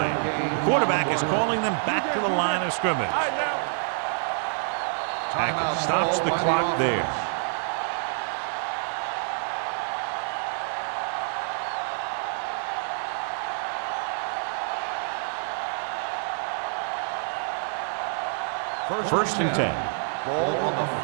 The quarterback is calling them back to the line of scrimmage. Hackett stops the clock there. First and 10. Ball on the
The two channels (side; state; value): left; silent; 60 dB below the other